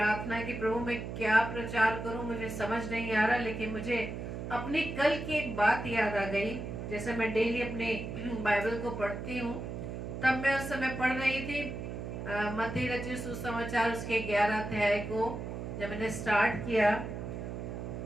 की, प्रभु मैं क्या प्रचार करूं, मुझे समझ नहीं आ रहा. लेकिन मुझे अपनी कल की एक बात याद आ गई. जैसे मैं डेली अपने बाइबल को पढ़ती हूँ तब मैं उस समय पढ़ रही थी मत्ती रचित सुसमाचार उसके 11 अध्याय को जब मैंने स्टार्ट किया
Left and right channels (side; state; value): right; noise; hum, 6 dB below the sound